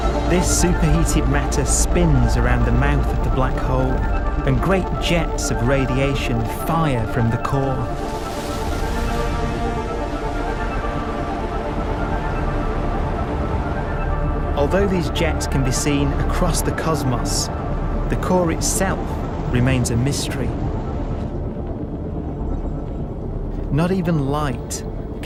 This superheated matter spins around the mouth of the black hole, and great jets of radiation fire from the core. Although these jets can be seen across the cosmos, the core itself remains a mystery. Not even light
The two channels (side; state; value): both; identical; correlation 1.00